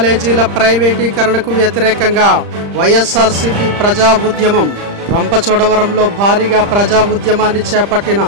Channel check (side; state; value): left; late; 35 ms